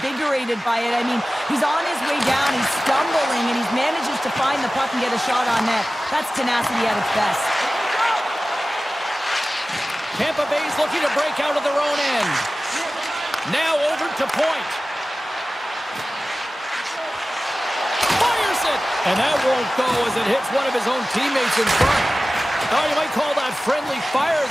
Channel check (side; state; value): both; normal; correlation 0.96